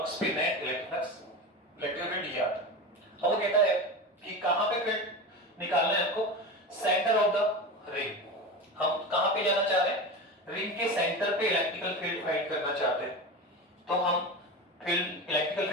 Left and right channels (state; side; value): normal; both; correlation 0.25